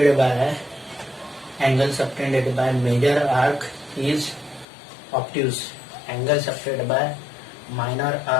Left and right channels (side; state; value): right; drops out; at 4.7 s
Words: by major arc is obtuse. Angle subtended by minor